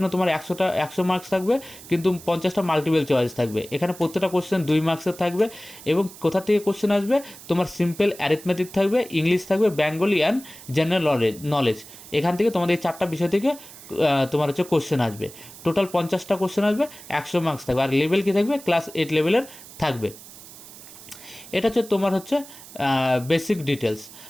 তোমার 100 মার্কস থাকবে, কিন্তু 50টা মাল্টিপল চয়েস থাকবে। এখানে প্রত্যেকটা কোশ্চেন 2 মার্কসের থাকবে। এবং কোথা থেকে কোশ্চেন আসবে, তোমার সিম্পল অ্যারিথমেটিক থাকবে, ইংলিশ থাকবে, বেঙ্গলি অ্যান্ড জেনারেল নলেজ। এখান থেকে তোমাদের এই 4টা বিষয় থেকে তোমার হচ্ছে কোশ্চেন আসবে। টোটাল 50টা কোশ্চেন আসবে, 100 মার্কস থাকবে। আর লেভেল কী থাকবে, ক্লাস 8 লেভেলের থাকবে। এটা হচ্ছে তোমার হচ্ছে বেসিক ডিটেলস।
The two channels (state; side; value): noise; right; hiss, 17 dB below the sound